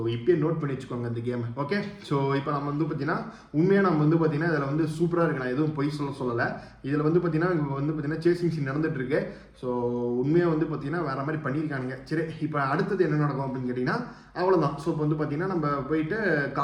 இப்போயே நோட் பண்ணி வச்சுக்கோங்க இந்த கேம். ஓகே, ஸோ இப்போ நம்ம வந்து பார்த்தீங்கன்னா உண்மையாக நம்ம வந்து பார்த்தீங்கன்னா இதில் வந்து சூப்பராக இருக்கு. நான் எதுவும் பொய் சொல்லலை. இதில் வந்து பார்த்தீங்கன்னா இப்போ வந்து பார்த்தீங்கன்னா சேசிங் சீன் நடந்துட்டு இருக்கு. ஸோ உண்மையாக வந்து பார்த்தீங்கன்னா வேற மாதிரி பண்ணியிருக்கானுங்க. சரி, இப்போ அடுத்தது என்ன நடக்கும் அப்படின்னு கேட்டிங்கன்னா அவ்வளோதான். ஸோ இப்போ வந்து பார்த்தீங்கன்னா நம்ம போயிட்டு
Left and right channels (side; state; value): both; identical; correlation 1.00